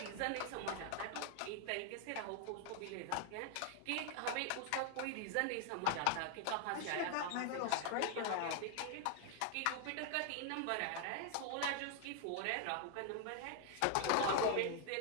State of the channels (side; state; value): both; different; correlation 0.00